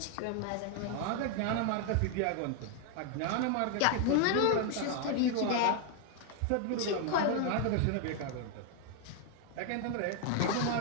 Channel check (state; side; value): different; both; correlation 0.00